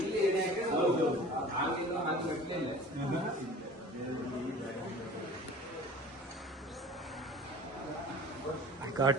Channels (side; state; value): both; normal; correlation 0.42